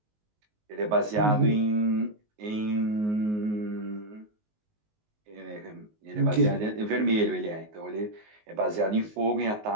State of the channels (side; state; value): left; late; 19 ms